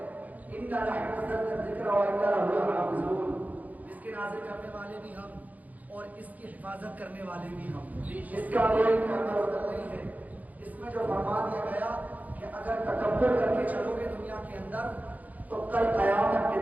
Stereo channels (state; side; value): late; left; 0.078 ms